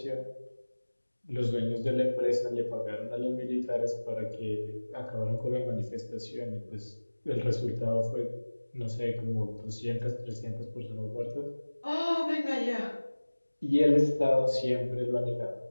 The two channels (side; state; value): both; inverted; correlation -1.00